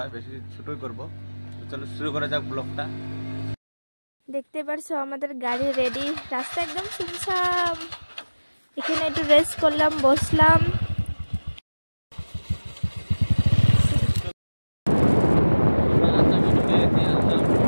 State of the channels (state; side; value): inverted; both; correlation -1.00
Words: বেশি ছোটই করব তো চলো শুরু করা যাক ব্লগটা দেখতে পারছো আমাদের গাড়ি রেডি রাস্তা একদম সুনসাম এখানে একটু রেস্ট করলাম বসলাম